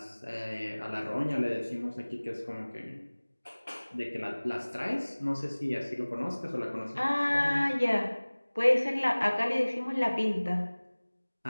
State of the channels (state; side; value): inverted; both; correlation -1.00